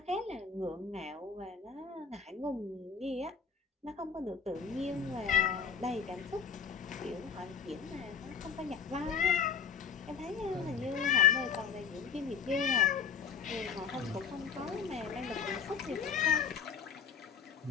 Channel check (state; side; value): quieter; right; 6.5 dB